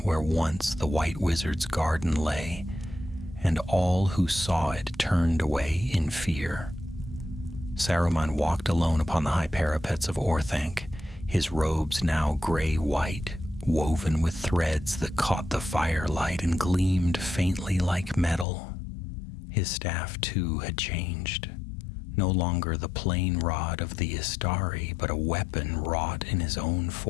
once the White Wizard's garden lay, and all who saw it turned away in fear. Saruman walked alone upon the high parapets of Orthanc, his robes now gray-white, woven with threads that caught the firelight and gleamed faintly like metal. His staff, too, had changed. No longer the plain rod of the Istari, but a weapon wrought in his own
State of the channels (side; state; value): right; drops out; at 18.4 s